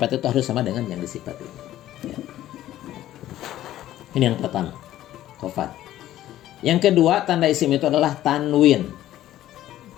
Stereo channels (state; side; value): quieter; right; 13.5 dB